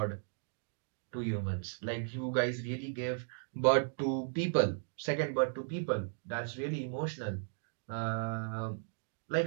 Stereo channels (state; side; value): silent; left; digital silence